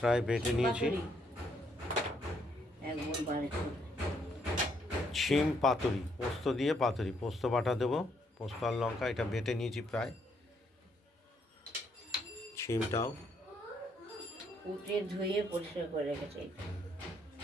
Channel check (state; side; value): normal; both; correlation 0.72